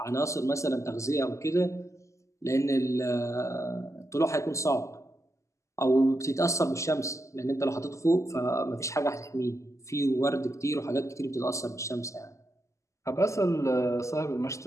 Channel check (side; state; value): right; late; 0.15 ms